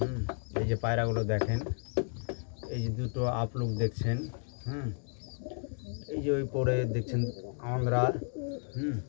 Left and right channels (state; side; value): silent; right; 56 dB below the other